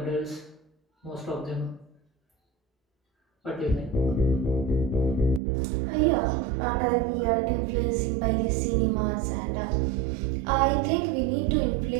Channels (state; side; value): drops out; left; at 5.4 s